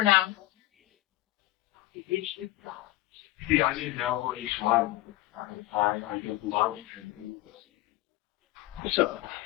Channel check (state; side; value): quieter; right; 17.1 dB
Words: now. See, I didn't know each one. I don't love it. Sir,